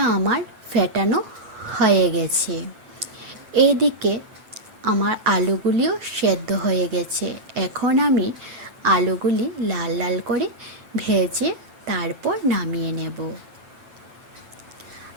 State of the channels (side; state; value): left; late; 9.0 ms